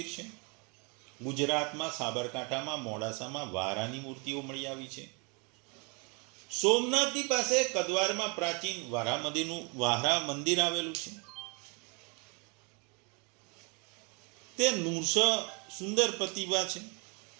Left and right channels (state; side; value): quieter; left; 31.9 dB